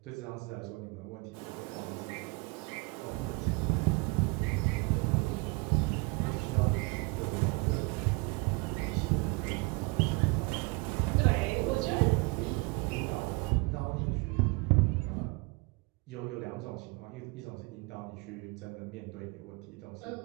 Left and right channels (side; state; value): left; quieter; 27.9 dB